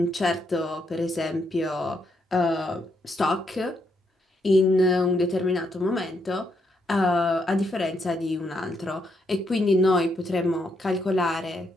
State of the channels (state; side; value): normal; both; correlation 0.77